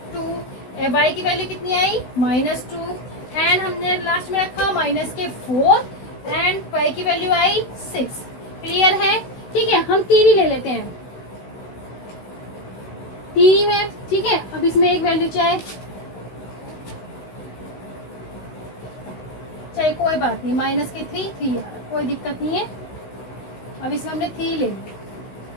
2, y की वैल्यू कितनी आई -2, एंड हमने लास्ट में रखा माइनस के 4 एंड y की वैल्यू आई 6। क्लियर है। ठीक है, हम 3 ही ले लेते हैं, 3 है, ठीक है। अब इसमें एक वैल्यू चाहे कोई बात नहीं, माइनस के 3 आ रहा, कोई दिक्कत नहीं है। अब इसमें हमने 3 ले लिया,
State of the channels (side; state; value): right; late; 16 ms